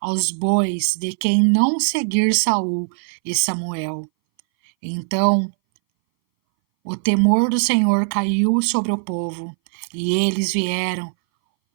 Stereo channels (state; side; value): silent; left; 61 dB below the other